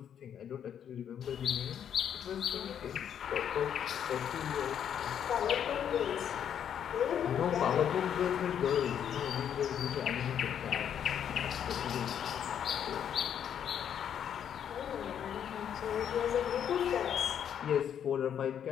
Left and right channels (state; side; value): quieter; right; 9.0 dB